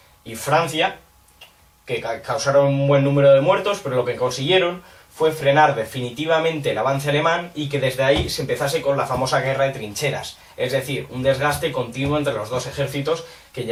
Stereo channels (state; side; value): identical; both; correlation 1.00